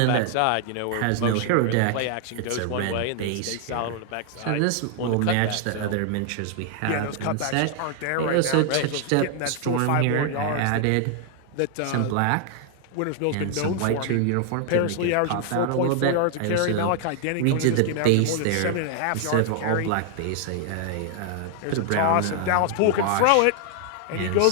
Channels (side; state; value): both; different; correlation 0.00